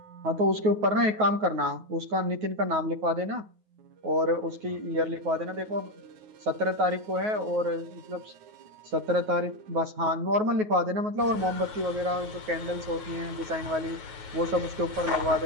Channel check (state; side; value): late; left; 9.4 ms